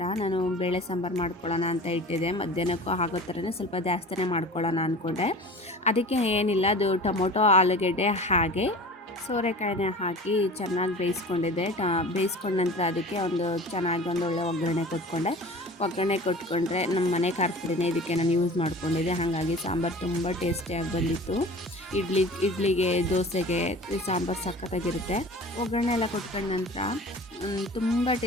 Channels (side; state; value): both; normal; correlation 0.40